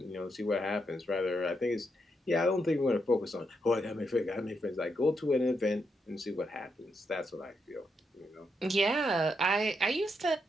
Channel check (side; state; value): both; normal; correlation 0.81